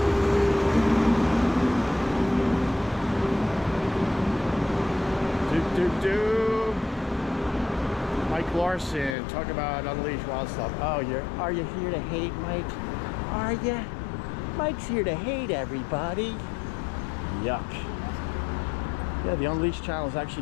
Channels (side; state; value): right; drops out; at 9.2 s